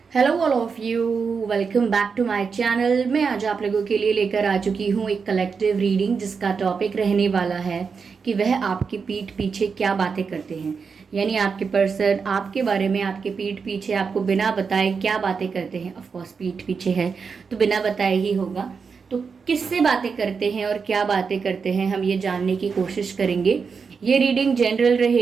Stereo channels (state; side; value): quieter; left; 5.5 dB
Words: Hello all of you. Welcome back to my channel. मैं आज आप लोगों के लिए लेकर आ चुकी हूँ एक कलेक्टिव रीडिंग जिसका टॉपिक रहने वाला है कि वह आपकी पीठ पीछे क्या बातें करते हैं। यानी आपके पर्सन आपके बारे में आपके पीठ पीछे आपको बिना बताए क्या बातें करते हैं। ऑफ कोर्स पीठ पीछे है तो बिना बताए ही होगा। तो किससे बातें करते हैं और क्या बातें करते हैं हम ये जानने की कोशिश करेंगे। ये रीडिंग जनरल